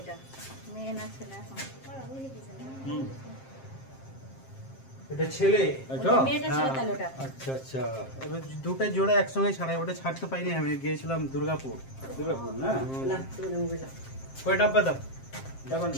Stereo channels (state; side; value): late; right; 7.5 ms